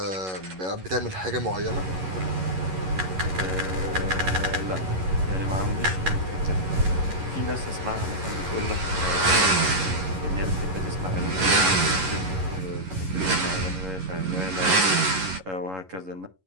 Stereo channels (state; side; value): late; left; 11 ms